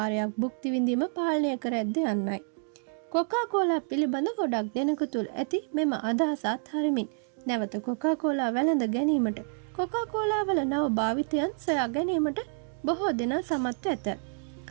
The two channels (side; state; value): left; silent; 59 dB below the other